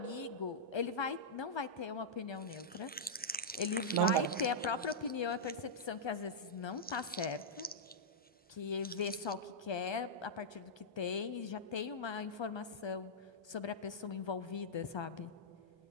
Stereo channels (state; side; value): normal; both; correlation -0.10